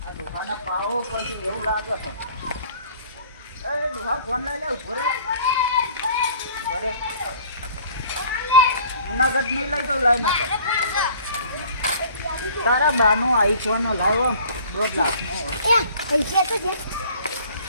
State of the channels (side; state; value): both; inverted; correlation -0.52